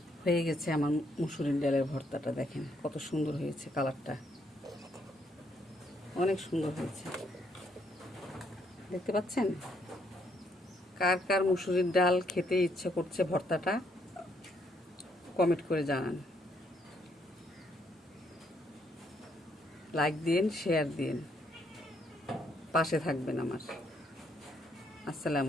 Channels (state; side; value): normal; both; correlation 0.72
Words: হয়ে গেছে আমার মুসুরির ডালের ভর্তাটা। দেখেন কত সুন্দর হয়েছে, কালারটা অনেক সুন্দর হয়েছে, দেখতে পাচ্ছেন? কার কার মুসুরির ডাল খেতে ইচ্ছে করছে ভর্তাটা কমেন্ট করে জানান। লাইক দিন, শেয়ার দিন, পাশে থাকবেন আমার।